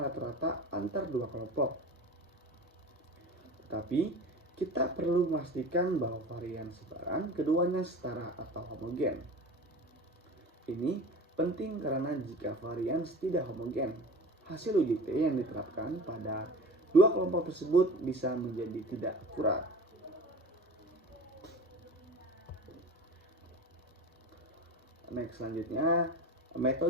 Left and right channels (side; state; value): both; normal; correlation 0.36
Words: rata-rata antar dua kelompok. Tetapi kita perlu memastikan bahwa varian sebaran keduanya setara atau homogen. Ini penting karena jika varian tidak homogen, hasil uji T yang diterapkan pada dua kelompok tersebut bisa menjadi tidak akurat. Next, selanjutnya